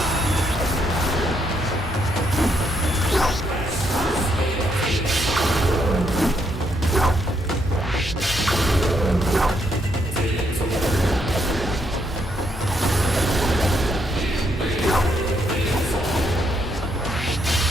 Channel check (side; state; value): both; normal; correlation 0.75